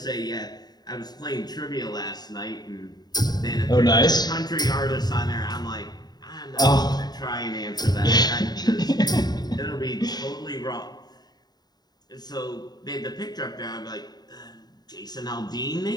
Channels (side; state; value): right; late; 0.20 ms